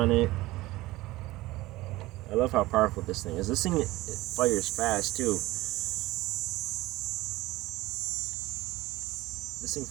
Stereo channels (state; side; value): quieter; left; 18.7 dB